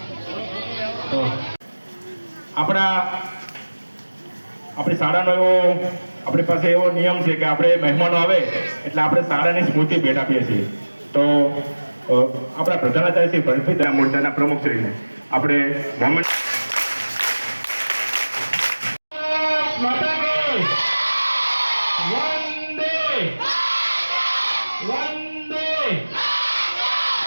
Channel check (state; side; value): inverted; both; correlation -1.00